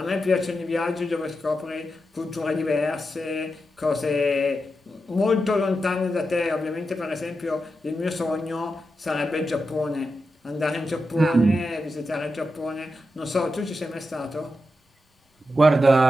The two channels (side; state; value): both; normal; correlation 0.88